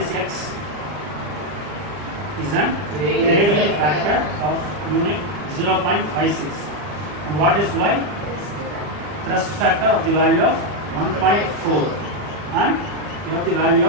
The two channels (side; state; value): left; late; 40 ms